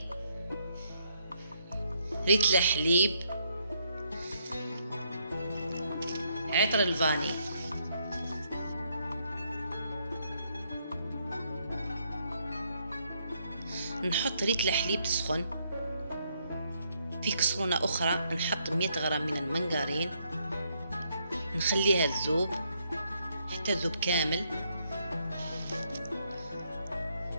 ريتل حليب، عطر الفاني. نحط ريتل حليب تسخن. في كسرونة أخرى نحط 100 غرام من المنغرين، نخليها تذوب حتى تذوب كامل.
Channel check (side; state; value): both; inverted; correlation -0.74